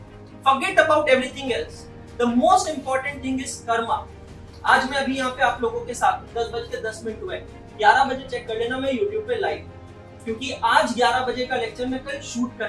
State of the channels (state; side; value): identical; both; correlation 1.00